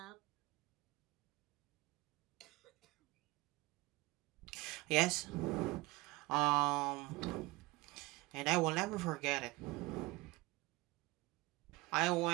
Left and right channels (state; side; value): quieter; left; 21.6 dB